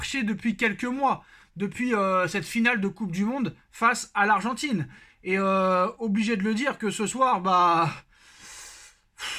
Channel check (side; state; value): both; identical; correlation 1.00